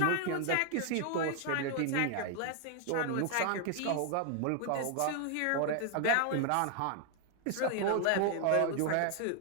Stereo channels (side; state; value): both; different; correlation 0.00